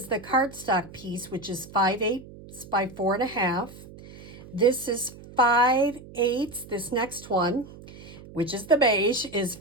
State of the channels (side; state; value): right; noise; hum, 18 dB below the sound